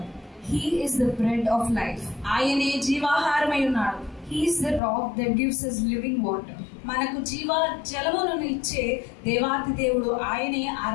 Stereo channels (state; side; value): drops out; right; at 4.8 s